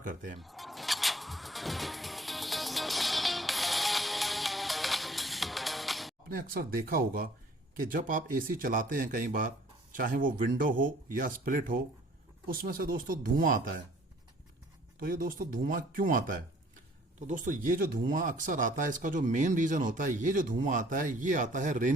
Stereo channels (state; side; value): normal; both; correlation 0.56